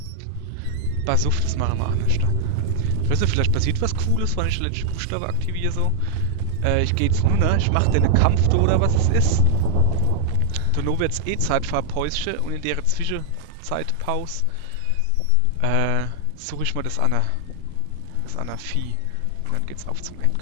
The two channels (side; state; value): both; different; correlation 0.00